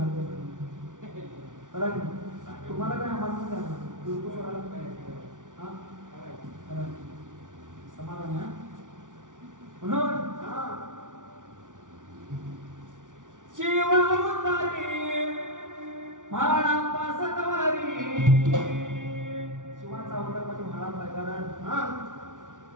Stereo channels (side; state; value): left; late; 0.87 ms